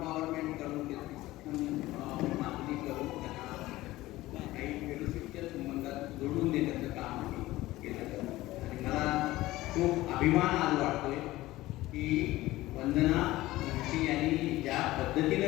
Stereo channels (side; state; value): right; quieter; 17.5 dB